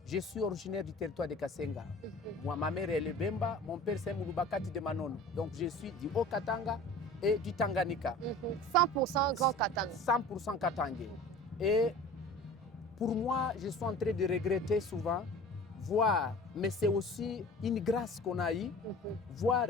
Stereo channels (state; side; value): normal; both; correlation 0.41